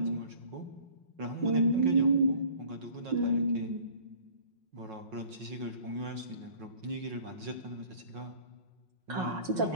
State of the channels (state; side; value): late; left; 5.5 ms